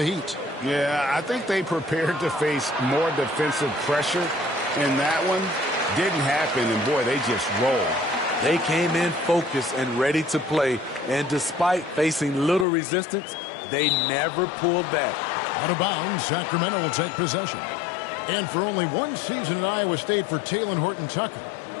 Heat. Yeah, I think they prepared to face more defensive pressure in that one. Didn't happen, and boy, they just rolled. They came in focused and ready to play, and despite facing little resistance, they never pulled back. Out of bounds, Sacramento will take possession. And for only one season at Iowa State for Talen Horton-Tucker,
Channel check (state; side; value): drops out; right; at 12.7 s